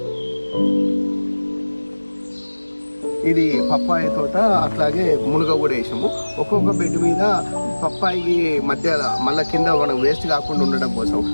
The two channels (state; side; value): inverted; both; correlation -1.00